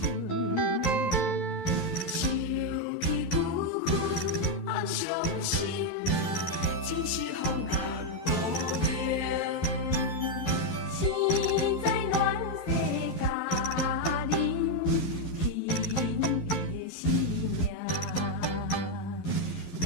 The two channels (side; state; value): right; late; 11 ms